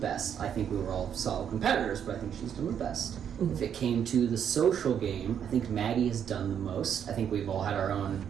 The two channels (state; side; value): quieter; left; 8.6 dB